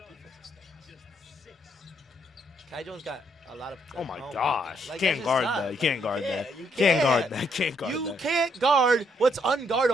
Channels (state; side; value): normal; both; correlation 0.73